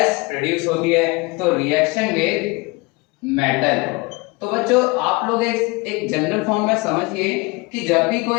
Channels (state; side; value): quieter; right; 26.0 dB